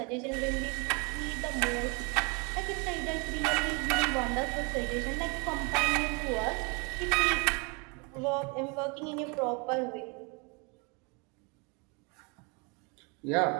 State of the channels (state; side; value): quieter; left; 31.7 dB